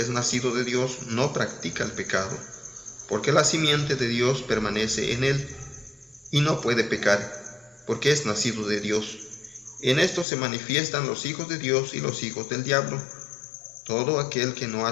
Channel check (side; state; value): right; drops out; at 10.2 s